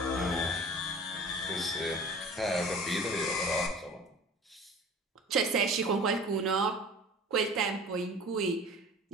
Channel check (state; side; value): normal; both; correlation 0.42